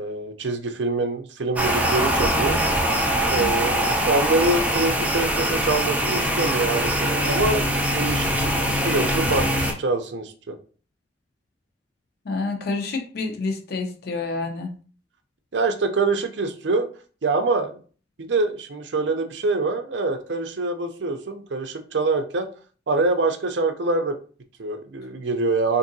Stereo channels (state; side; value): normal; both; correlation 0.18